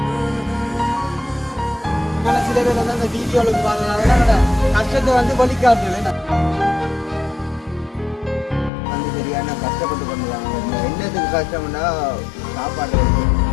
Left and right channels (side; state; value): right; drops out; at 8.7 s